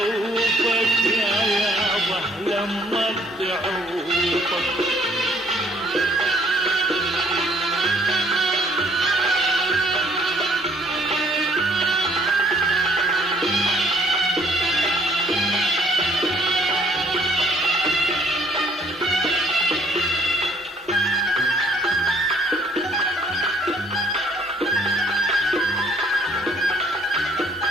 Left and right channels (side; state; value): both; normal; correlation 0.62